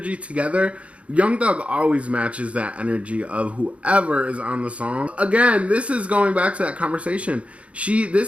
together, Young Thug always matches that energy of whoever is on the song. Again, this is going back to that conversation.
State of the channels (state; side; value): late; left; 0.063 ms